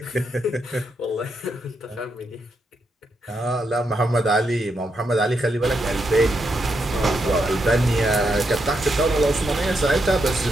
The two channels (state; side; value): normal; both; correlation 0.81